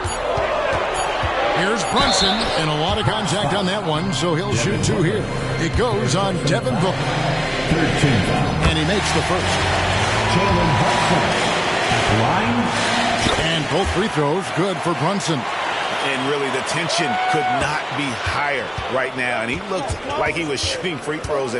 Here's Brunson, and a lot of contact on that one, so he'll shoot 2 here. It goes on Devin Booker. And he makes the first. And both free throws good for Brunson. And really, the tension could not be higher right now. And he looked like he was shooting free throws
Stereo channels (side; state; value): both; identical; correlation 1.00